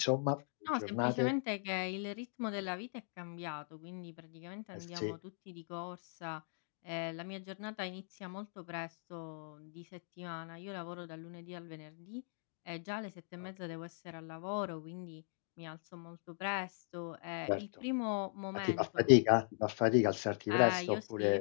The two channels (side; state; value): right; silent; digital silence